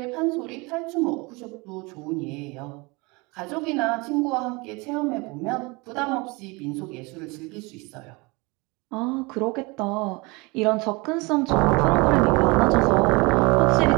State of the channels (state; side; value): quieter; left; 26.5 dB